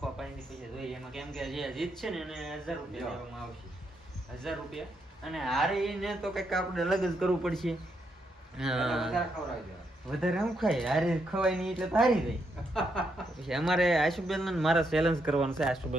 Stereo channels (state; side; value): normal; both; correlation 0.79